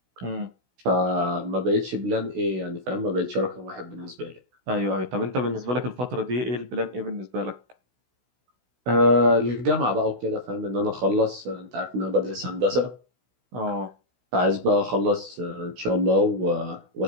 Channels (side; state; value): left; late; 16 ms